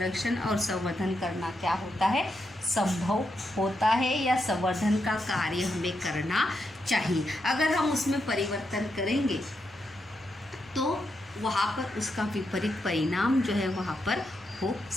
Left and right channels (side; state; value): both; normal; correlation 0.83